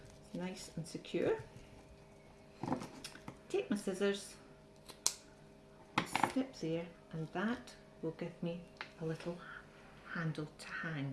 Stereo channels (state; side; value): identical; both; correlation 1.00